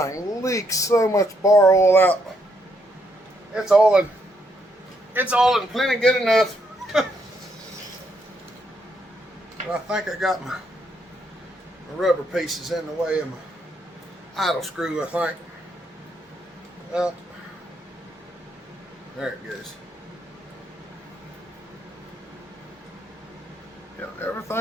leaks so much bar oil out. It's oiling plenty good enough. But I think I got my rubber pieces in the way of my idle screw, I think. Well, there it goes. Yeah,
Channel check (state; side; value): normal; both; correlation 0.75